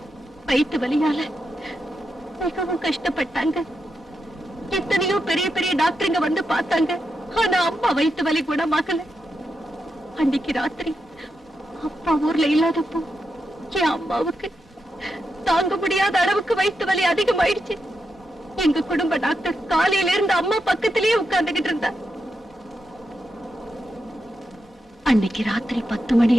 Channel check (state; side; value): normal; both; correlation 0.86